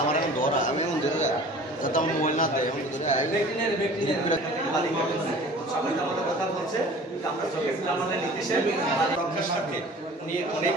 আমার এখন ধরা আমি এখন ধরে যাতে আমার মোবাইল না দেয় এখন ধরে সবাই আমাদের কথা বলছে আমরা চোখে আমাদের নির্দেশে রক্ষার স্বার্থে উনি অনেক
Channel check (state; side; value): normal; both; correlation 0.45